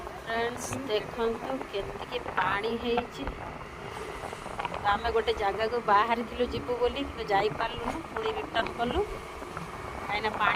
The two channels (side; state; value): both; identical; correlation 1.00